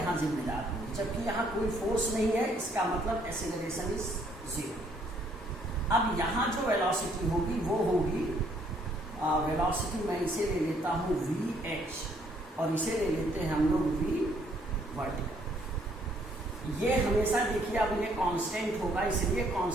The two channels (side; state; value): both; normal; correlation 0.66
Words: जिम्मेदार होगी, जबकि यहां कोई फोर्स नहीं है। इसका मतलब एक्सेलरेशन इज 0। अब यहां जो वेलोसिटी होगी वो होगी वेलोसिटी, मैं इसे ले लेता हूं VH और इसे ले लेते हैं हम लोग V वर्टिकल। ये हमेशा देखिए अब ये कांस्टेंट होगा, इसलिए